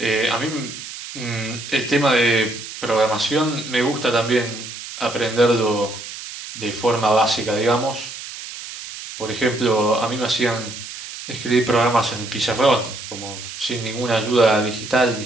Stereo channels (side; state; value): right; noise; hiss, 11 dB below the sound